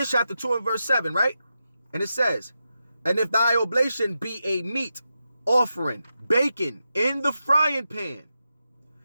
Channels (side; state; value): both; inverted; correlation -0.88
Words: chapter 2 and verse 7, right? And it says, and if thy oblation be a meat offering, baking in the frying pan,